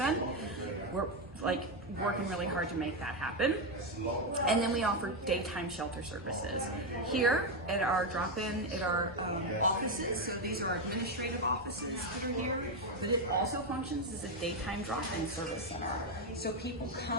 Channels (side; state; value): both; normal; correlation 0.06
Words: We're working really hard to make that happen. And then we offer daytime shelter services here at our drop-in, at our offices. So these are our administrative offices that are here, but it also functions as a daytime drop-in service center. So people